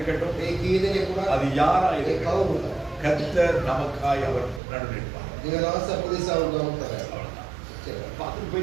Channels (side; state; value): left; drops out; at 4.6 s